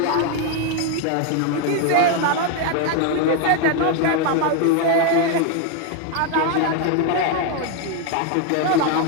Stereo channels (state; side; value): different; both; correlation 0.01